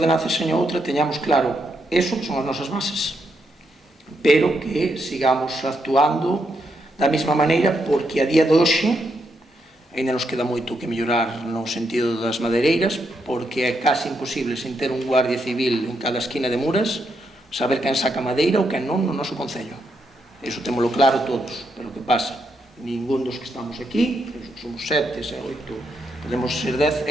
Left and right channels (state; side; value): normal; both; correlation 0.80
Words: e seña outra teñamos claro eso que son as nosas bases, pero que sigamos actuando da mesma maneira, porque a día de hoxe ainda nos queda moito que mellorar no sentido das madeireiras, porque é case imposible, sen ter un guardia civil en cada esquina de Muras, saber quen saca madeira ou quen non no noso concello. Iso témolo claro todos, pero que pasa? Ningún dos que estamos aquí, somos 7, 8, podemos ser 10,